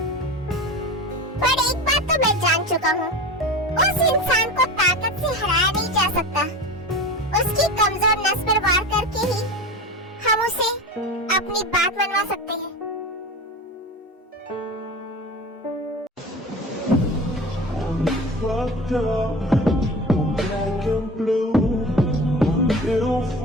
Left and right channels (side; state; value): both; normal; correlation 0.31